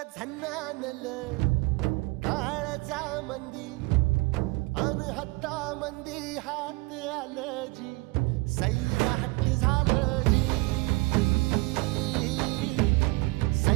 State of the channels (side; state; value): left; quieter; 24.5 dB